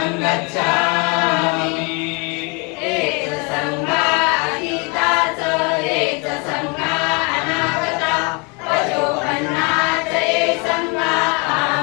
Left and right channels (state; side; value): quieter; right; 31.5 dB